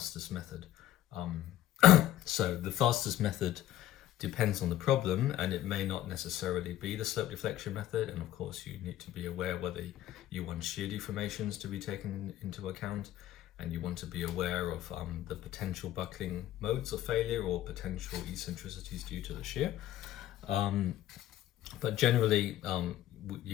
method. So the fastest method depends on the problem, and it may not necessarily be the slope deflection method. And of course, you need to be aware whether you want shear deformations to be taken into account, and you want to be aware of the potential buckling modes of failure or potential eccentricities due to the shear. But generally,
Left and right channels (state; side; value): quieter; right; 13.2 dB